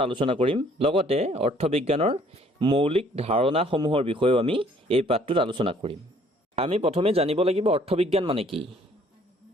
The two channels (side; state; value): both; normal; correlation 0.60